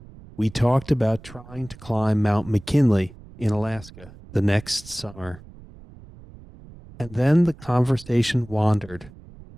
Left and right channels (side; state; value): right; noise; rumble, 20 dB below the sound